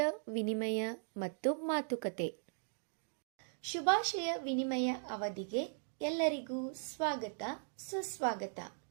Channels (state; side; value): silent; left; digital silence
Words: ವಿನಿಮಯ ಮತ್ತು ಮಾತುಕತೆ. ಶುಭಾಶಯ ವಿನಿಮಯ ಅವಧಿಗೆ ಎಲ್ಲರಿಗೂ ಸ್ವಾಗತ ಸುಸ್ವಾಗತ.